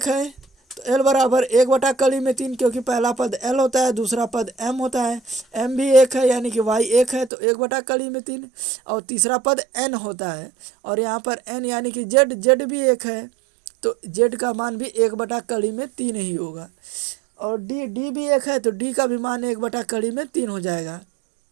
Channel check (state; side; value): drops out; left; at 7.3 s